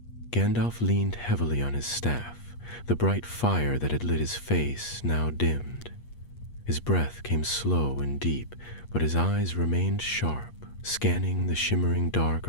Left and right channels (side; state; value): right; late; 8.4 ms